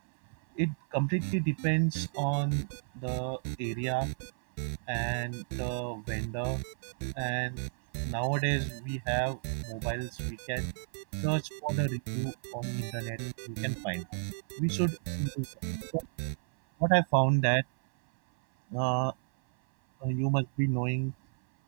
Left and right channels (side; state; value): left; silent; 57 dB below the other